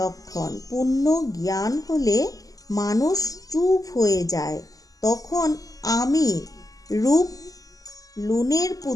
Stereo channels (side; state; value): right; late; 0.17 ms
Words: পূর্ণ জ্ঞান হলে মানুষ চুপ হয়ে যায়, তখন আমি রূপ লুনের